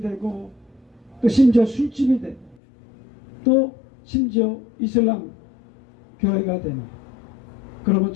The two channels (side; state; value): right; drops out; at 2.6 s